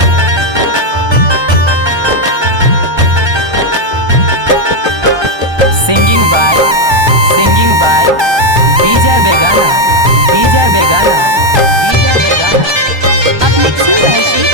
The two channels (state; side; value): late; left; 1.2 ms